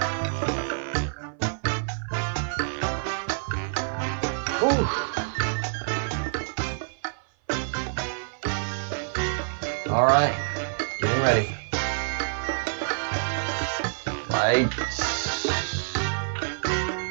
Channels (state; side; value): silent; left; 55 dB below the other